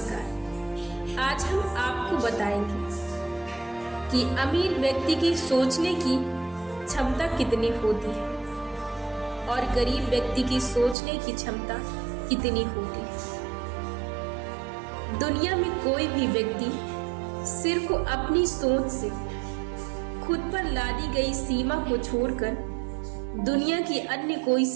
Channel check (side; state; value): left; drops out; at 11.0 s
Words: आज हम आपको बताएंगे कि अमीर व्यक्ति की सोचने की क्षमता कितनी होती है और गरीब व्यक्ति की सोचने की क्षमता कितनी होती है। दुनिया में कोई भी व्यक्ति सिर्फ अपनी सोच से खुद पर लादी गई सीमा को छोड़कर दुनिया की अन्य कोई